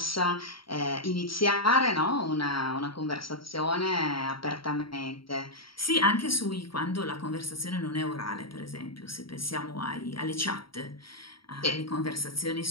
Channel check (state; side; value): late; right; 0.74 ms